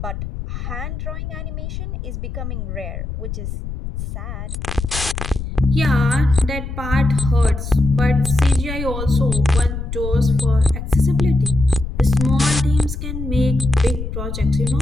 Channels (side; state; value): left; noise; rumble, 6 dB below the sound